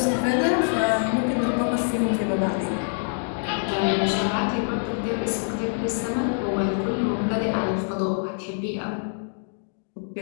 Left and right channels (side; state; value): right; silent; digital silence